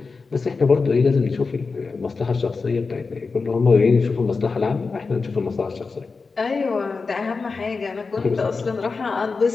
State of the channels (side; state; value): right; quieter; 4.4 dB